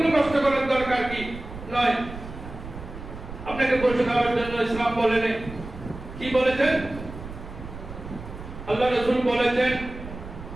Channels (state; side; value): noise; right; rumble, 12 dB below the sound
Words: কষ্ট করার দরকার কি নয়। আপনাকে বসে খাওয়ার জন্য ইসলাম বলেন, কি বলেছেন? আল্লাহ রাসূল বলেছেন